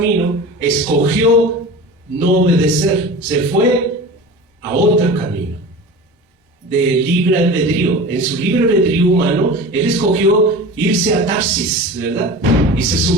escogió no obedecer, se fue a otro camino de libre albedrío. En su libre albedrío humano, él escogió irse a Tarsis, ¿verdad? Y se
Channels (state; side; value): normal; both; correlation 0.34